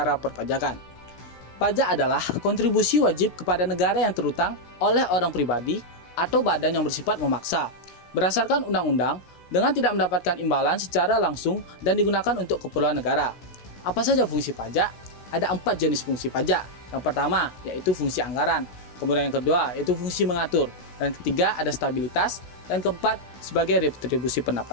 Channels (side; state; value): right; late; 16 ms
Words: Perpajakan. Pajak adalah kontribusi wajib kepada negara yang terutang oleh orang pribadi atau badan yang bersifat memaksa. Berdasarkan undang-undang, dengan tidak mendapatkan imbalan secara langsung dan digunakan untuk keperluan negara. Apa saja fungsi pajak? Ada 4 jenis fungsi pajak. Yang pertama, yaitu fungsi anggaran. Kemudian yang kedua, yaitu fungsi mengatur. Dan ketiga, ada stabilitas. Dan keempat, sebagai retribusi